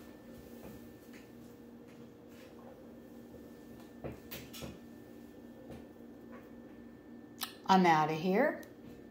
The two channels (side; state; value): both; identical; correlation 1.00